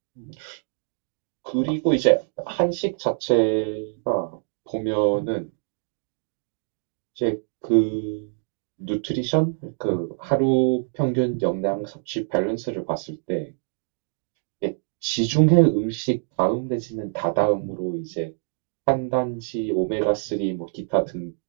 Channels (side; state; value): left; silent; digital silence